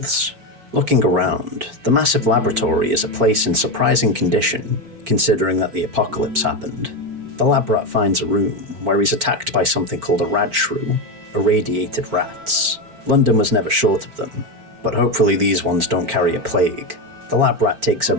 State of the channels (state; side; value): late; left; 4.4 ms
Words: Looking around, the massive laboratory is a place in surprising condition, considering that the apocalypse happened. The lab rat finds a room where he's attacked by something called a radshrew, irradiated rats. London was never short of them, but hopefully these ones don't carry a plague. The lab rat takes